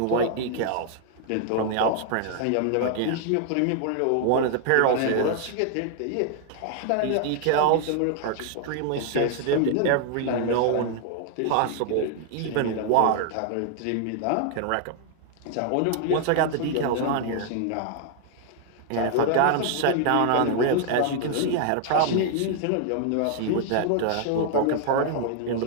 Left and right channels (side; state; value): both; different; correlation 0.00